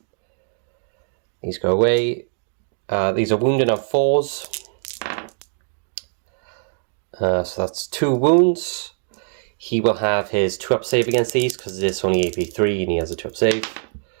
These go away. These are wounded on 4s. So that's 2 wounds. He will have his 2-up save against these because it's only AP3 and he has a 2-up save.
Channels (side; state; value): left; silent; digital silence